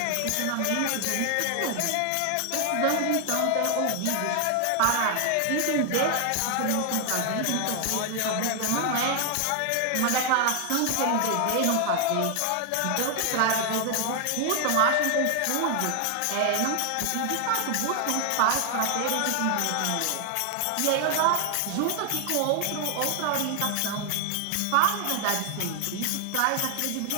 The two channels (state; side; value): different; both; correlation 0.00